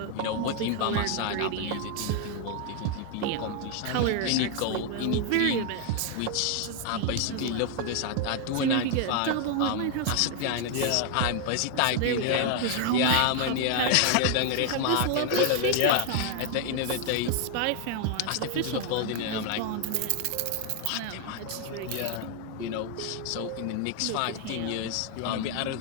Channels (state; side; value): different; both; correlation 0.00